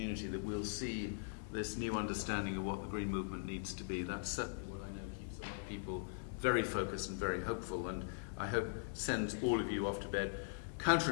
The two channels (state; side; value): silent; right; 50 dB below the other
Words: that we'll see this new understanding of what the green movement needs to be. That's certainly what I know keeps a lot of people very focused and very hopeful, and I hope sends all of you off to bed